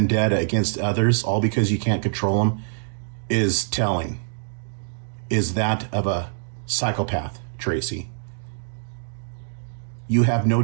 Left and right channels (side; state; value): left; silent; digital silence